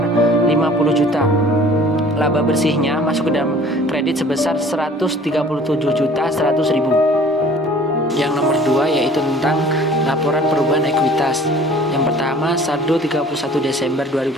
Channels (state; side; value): normal; both; correlation 0.49